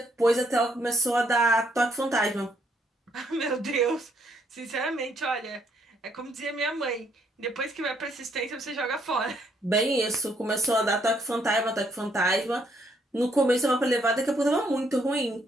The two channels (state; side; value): normal; both; correlation 0.70